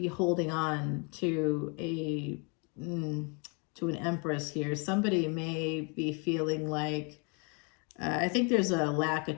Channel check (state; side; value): quieter; right; 34.4 dB